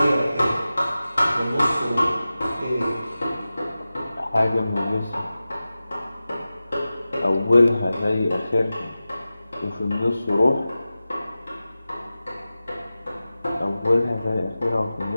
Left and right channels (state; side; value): inverted; both; correlation -0.95